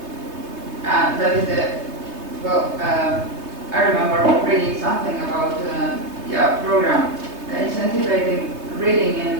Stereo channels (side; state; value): left; late; 3.3 ms